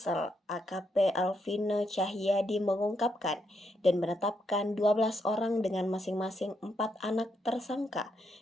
AKP Alvino Cahyadi mengungkapkan dan menetapkan 12 orang dengan masing-masing 4 anak tersangka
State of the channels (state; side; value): normal; both; correlation 0.78